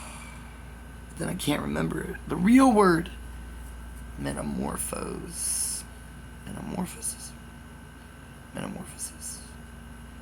I can't remember it. The real word. Metamorphose. Metamorphosis. Metamorphosis.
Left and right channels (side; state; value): both; identical; correlation 1.00